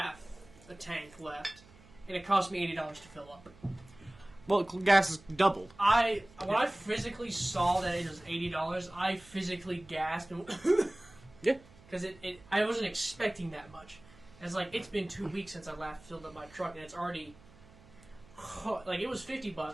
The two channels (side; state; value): right; noise; hum, 24 dB below the sound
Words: a tank left, and it cost me $80 to fill up. Well, gas is doubled. When I physically saw that it was $80, I physically gasped. And Yeah. Because I wasn't expecting that much. It's like, it's been 2 weeks since I last filled up my truck, and it's already... Like, it was